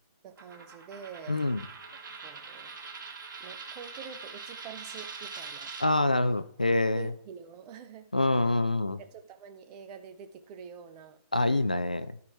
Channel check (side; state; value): both; inverted; correlation -0.85